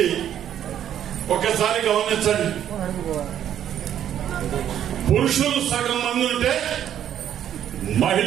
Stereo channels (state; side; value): quieter; left; 10.3 dB